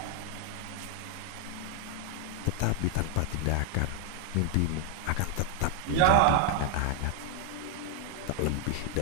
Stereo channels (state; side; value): different; both; correlation 0.00